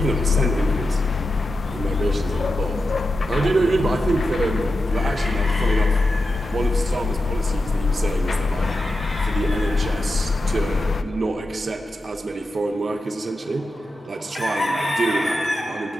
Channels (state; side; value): normal; both; correlation 0.89